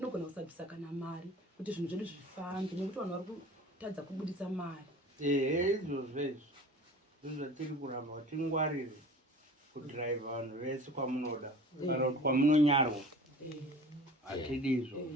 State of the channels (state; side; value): normal; both; correlation 0.42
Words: kusabvisa kana mari kuti zvinhu zvedu zvifambe, nekuti vanhu vari kutadza kubudisa mari. Izvozvo zvinhu zvatiri kuramba kuti tingwarire kudhiraivha vanhu vese kwamunoda kana kuti kwamunonyarwa. Hatidizvo.